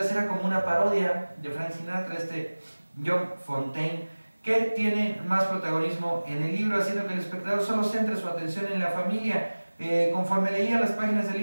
era como una parodia de Frank Sinatra, John Fontane, que tiene más protagonismo en el libro, haciendo que el espectador solo centre su atención en la familia. Conforme leía las páginas del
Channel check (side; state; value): both; inverted; correlation -1.00